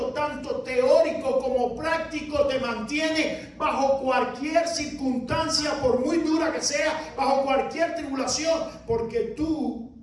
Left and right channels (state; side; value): identical; both; correlation 1.00